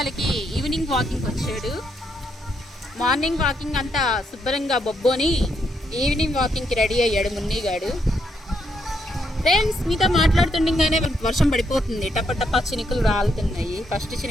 ఈవినింగ్ వాకింగ్ వచ్చాడు. మార్నింగ్ వాకింగ్ అంతా శుభ్రంగా బొబ్బోని ఈవినింగ్ వాకింగ్కి రెడీ అయ్యాడు మున్నీగాడు. ఫ్రెండ్స్, మీతో మాట్లాడుతుండగానే వర్షం పడిపోతుంది. టప టప చినుకులు రాలుతున్నాయి. ఫస్ట్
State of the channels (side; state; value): both; normal; correlation 0.77